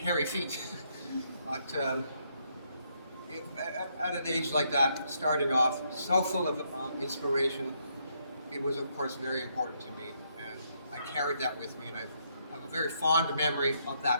feet. But at an age like that, starting off so full of inspiration, it was, of course, very important to me. And I carried that with me, and I have a very fond memory of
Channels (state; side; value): inverted; both; correlation -0.74